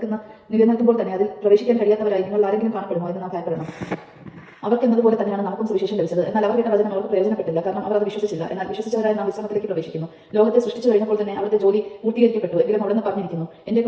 നിലനിൽക്കുമ്പോൾ തന്നെ അതിൽ പ്രവേശിക്കാൻ കഴിയാത്തവരായി നിങ്ങൾ ആരെങ്കിലും കാണപ്പെടുമോ എന്ന് നാം ഭയപ്പെടണം. അവർക്കെന്നതുപോലെ തന്നെയാണ് നമുക്കും സുവിശേഷം ലഭിച്ചത്. എന്നാൽ അവർ കേട്ട വചനം അവർക്ക് പ്രയോജനപ്പെട്ടില്ല, കാരണം അവർ അത് വിശ്വസിച്ചില്ല. എന്നാൽ വിശ്വസിച്ചവരായി നാം വിശ്രമത്തിലേക്ക് പ്രവേശിക്കുന്നു. ലോകത്തെ സൃഷ്ടിച്ചു കഴിഞ്ഞപ്പോൾ തന്നെ അവരുടെ ജോലി പൂർത്തീകരിക്കപ്പെട്ടു. എങ്കിലും അവിടെ നിന്ന് പറഞ്ഞിരിക്കുന്നു, എന്റെ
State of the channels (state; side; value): identical; both; correlation 1.00